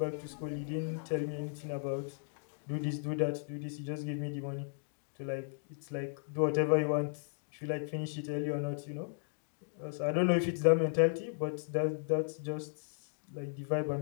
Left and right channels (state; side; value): silent; right; digital silence